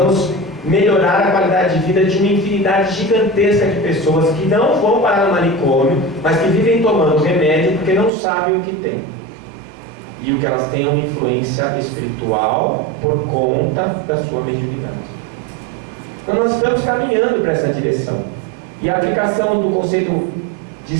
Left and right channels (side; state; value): left; drops out; at 8.1 s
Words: melhorar a qualidade de vida de uma infinidade gigantesca de pessoas que não vão parar no manicômio, mas que vivem tomando remédio porque não sabem o que tem. E o que elas têm é uma influência espiritual por conta da sua mediunidade. Então nós estamos caminhando para essa direção. E a aplicação do conceito de